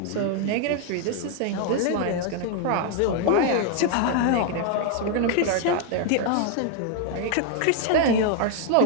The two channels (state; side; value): different; both; correlation 0.00